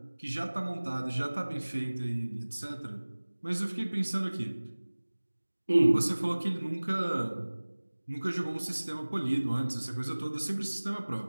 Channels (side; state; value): both; inverted; correlation -1.00